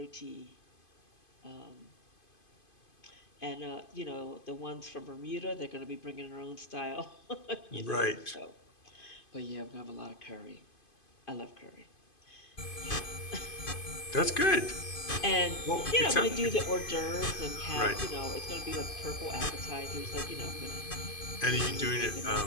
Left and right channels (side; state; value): right; late; 2.5 ms